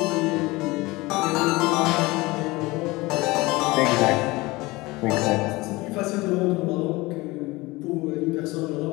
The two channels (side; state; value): right; quieter; 21.8 dB